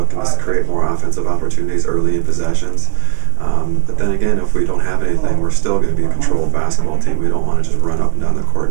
to create more offensive opportunities early in possessions. But then again, if we don't have anything, we're still going to be a controlled basketball team. We don't want to just run up and down the court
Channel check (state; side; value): quieter; left; 36.0 dB